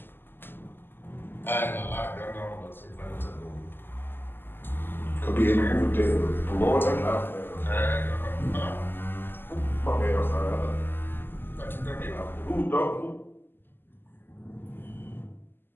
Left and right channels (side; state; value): right; late; 0.098 ms